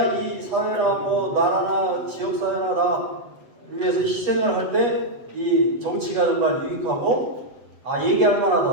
이 사회나 뭐 나라나 지역사회나 다 위해서 희생을 할 때 이 정치가 정말 유익하고 얘기할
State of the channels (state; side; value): late; left; 7.9 ms